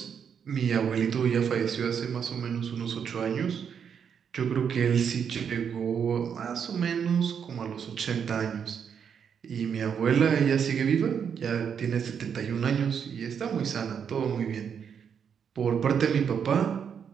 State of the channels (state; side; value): quieter; left; 7.4 dB